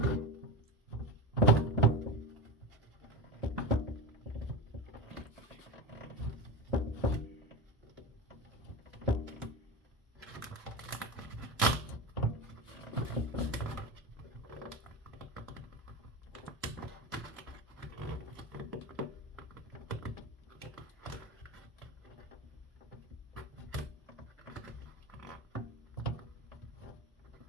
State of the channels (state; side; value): normal; both; correlation 0.23